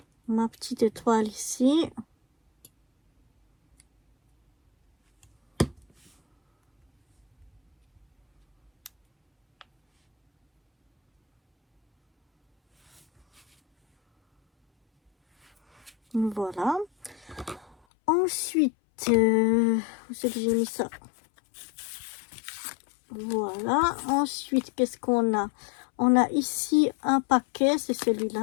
Ma petite étoile ici. Voilà. Ensuite, où c'est que j'ai mis ça? Voilà. Ensuite, qu'est-ce qu'on a? On a ici un paquet, c'est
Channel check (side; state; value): right; drops out; at 17.8 s